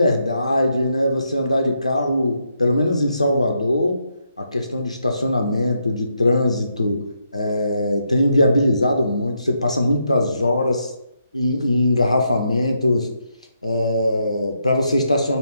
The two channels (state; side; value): inverted; both; correlation -0.79